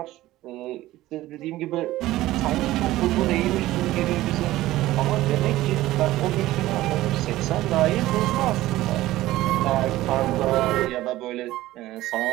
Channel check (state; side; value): quieter; left; 16.3 dB